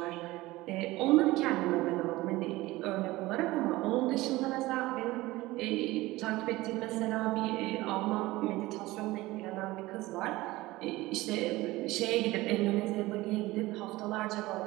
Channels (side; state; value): left; quieter; 19.1 dB